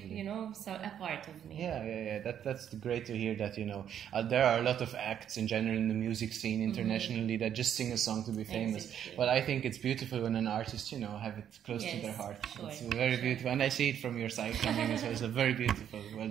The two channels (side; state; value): left; quieter; 9.5 dB